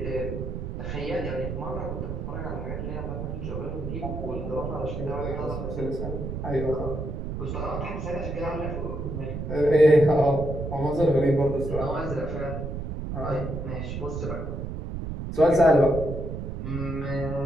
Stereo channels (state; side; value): noise; right; rumble, 5 dB below the sound